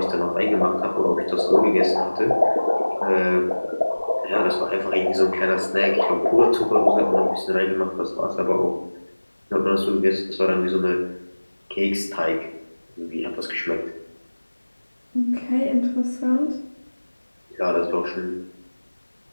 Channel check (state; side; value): inverted; both; correlation -1.00